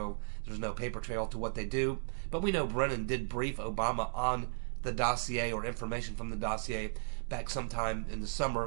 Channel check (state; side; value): silent; left; digital silence